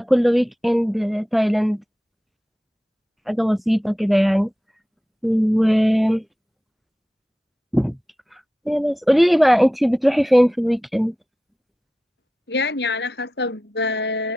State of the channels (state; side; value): normal; both; correlation 0.94